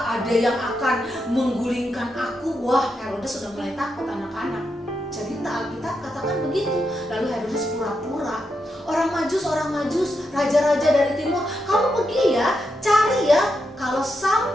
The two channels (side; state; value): both; normal; correlation 0.84